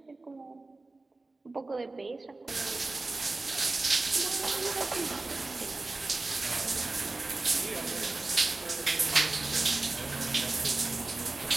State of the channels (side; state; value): left; quieter; 3.3 dB